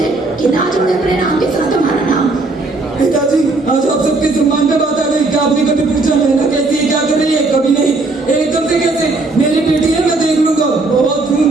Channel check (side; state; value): left; quieter; 3.3 dB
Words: कि ना जोड़े अपने नाम के साथ हमारा नाम। पिताजी, आज आप सबके सम्मान पे बात आ गई। क्या आपने कभी पूछा नैना कैसी है, क्या कर रही है? कभी नहीं। एकदम से कैसे? मेरी बेटी है, मैं देख लूंगा। बहुत